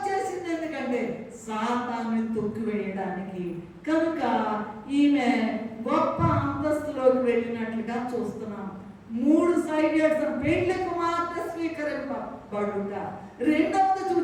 ఎందుకంటే సాతాన్ని తొక్కివేయడానికి. కనుక ఈమె గొప్ప అంతస్తులోకి వెళ్ళినట్లుగా చూస్తున్నాం. 3 సైడెడ్స్ పెళ్లి కుమార్తె స్వీకరింపబడుట. రెండవది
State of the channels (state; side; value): identical; both; correlation 1.00